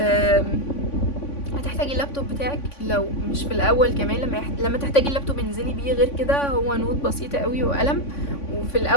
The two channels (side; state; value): right; late; 3.5 ms